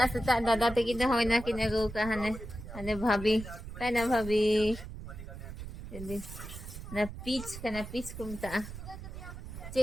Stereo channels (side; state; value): right; noise; rumble, 10 dB below the sound